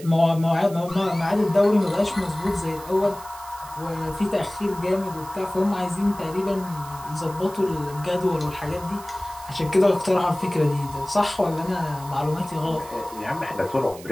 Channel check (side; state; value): right; noise; hiss, 18 dB below the sound